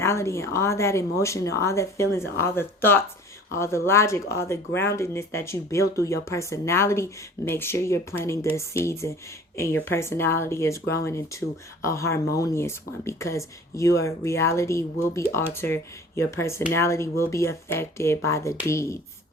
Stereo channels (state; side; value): normal; both; correlation 0.46